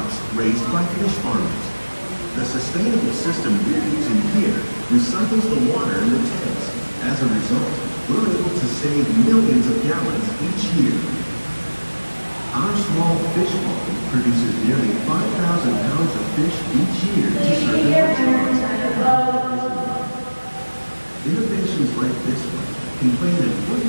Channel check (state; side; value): inverted; both; correlation -1.00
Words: raised by fish farmers. The sustainable system we're using here recycles the water in the tanks. As a result, we're able to save millions of gallons each year. Our small fish farm produces nearly 5,000 pounds of fish each year to serve as restaurants. Innovations like this one can play an